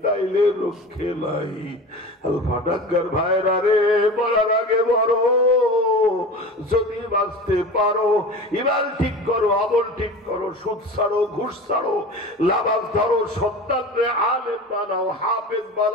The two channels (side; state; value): both; normal; correlation 0.33